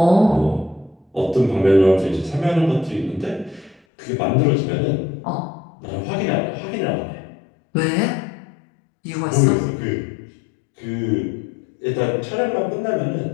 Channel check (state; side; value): drops out; right; at 3.8 s